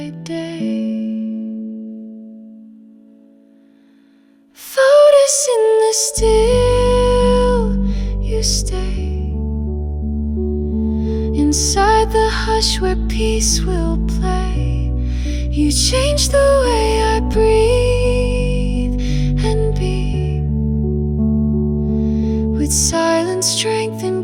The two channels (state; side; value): identical; both; correlation 1.00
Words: day. Lotus in the still, you stay inside the hush where peace will play. You change the way I breathe and be, with silence, strength,